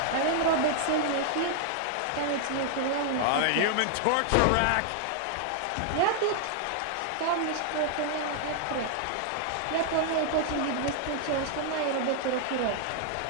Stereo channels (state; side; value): different; both; correlation -0.01